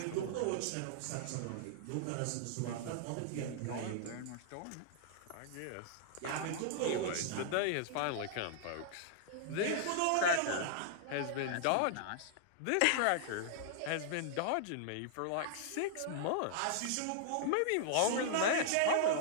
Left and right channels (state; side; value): different; both; correlation -0.01